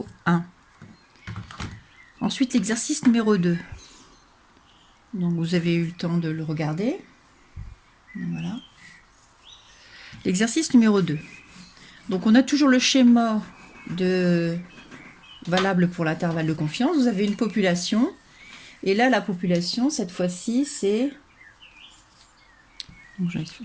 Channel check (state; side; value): identical; both; correlation 1.00